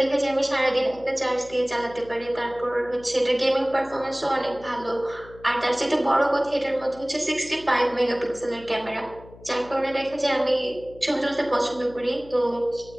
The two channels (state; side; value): noise; left; hum, 20 dB below the sound